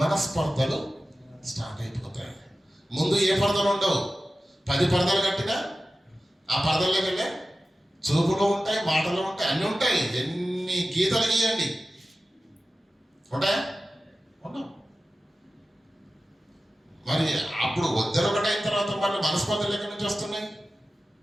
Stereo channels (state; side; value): normal; both; correlation 0.94